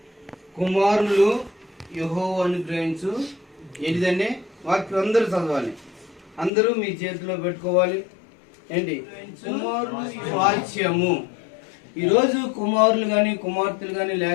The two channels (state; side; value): drops out; right; at 6.5 s